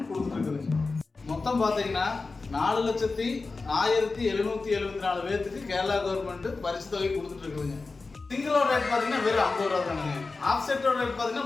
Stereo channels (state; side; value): quieter; right; 3.9 dB